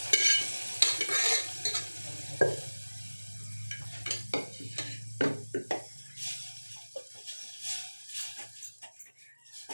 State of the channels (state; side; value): inverted; both; correlation -1.00